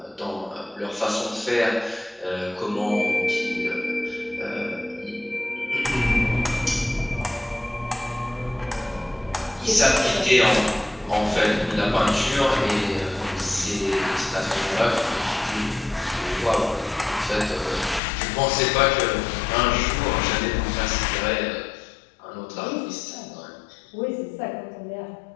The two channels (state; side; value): drops out; right; at 18.0 s